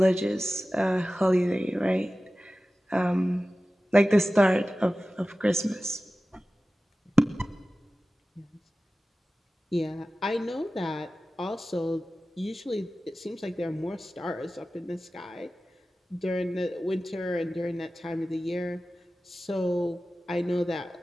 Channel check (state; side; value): normal; both; correlation 0.96